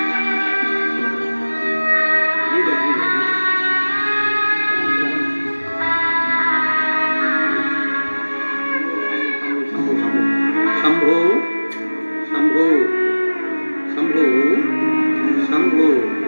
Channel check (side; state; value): both; inverted; correlation -1.00